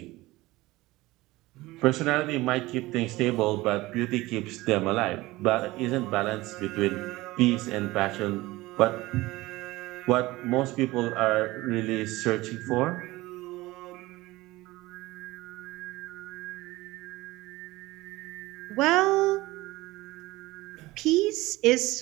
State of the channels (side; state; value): left; quieter; 19.5 dB